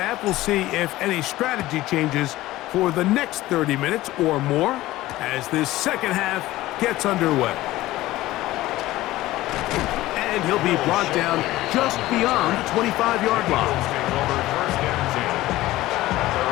We'll see if any strategy changes for the next 30 minutes or more as this second half gets underway. And he'll be brought down just beyond the 25-yard line.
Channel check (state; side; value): quieter; right; 16.8 dB